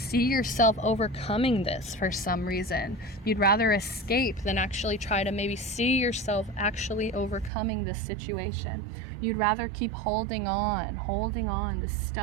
overcoming this for some reason. You'd rather escape than actually try to maybe see yourself actually overcoming this situation. You'd rather keep holding on. This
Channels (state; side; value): drops out; left; at 7.5 s